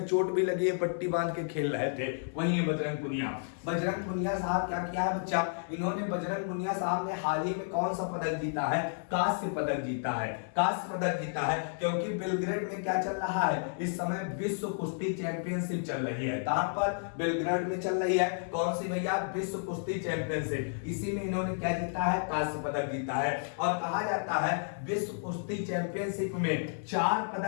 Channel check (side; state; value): right; silent; 57 dB below the other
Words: चोट भी लगी है, पट्टी बांध के खेल रहे थे, वही है बजरंग पुनिया। बजरंग पुनिया साहब क्या किया है बच्चा, इन्होंने बजरंग पुनिया साहब ने हाल ही में कौन सा पदक जीता है, कांस्य पदक जीता है। कांस्य पदक जीता है क्योंकि बेलग्रेड में क्या चल रहा है, इस समय विश्व कुश्ती चैंपियनशिप चल रही है। कहां पर, बेलग्रेड में चल रही है। कौन सी भैया, विश्व कुश्ती चैंपियनशिप। इसी में इन्होंने क्या जीता है, कांस्य पदक जीता है। और कहा जाता है विश्व कुश्ती चैंपियनशिप में 4